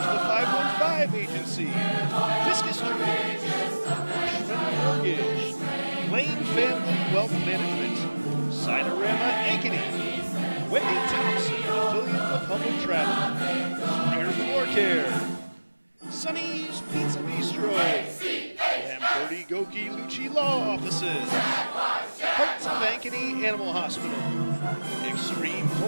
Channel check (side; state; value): both; inverted; correlation -1.00